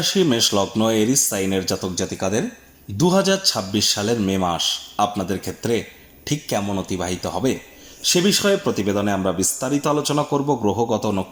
মেষ লগ্ন এরিস সাইনের জাতক জাতিকাদের 2026 সালের মে মাস আপনাদের ক্ষেত্রে ঠিক কেমন অতিবাহিত হবে সে বিষয়ে প্রতিবেদনে আমরা বিস্তারিত আলোচনা করব। গ্রহগত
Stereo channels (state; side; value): identical; both; correlation 1.00